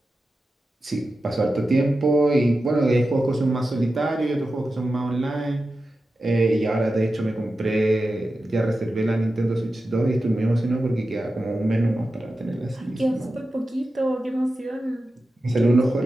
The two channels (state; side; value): normal; both; correlation 0.92